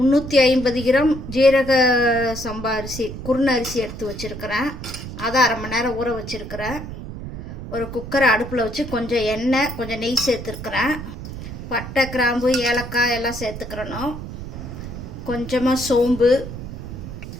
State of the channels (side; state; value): right; noise; rumble, 9 dB below the sound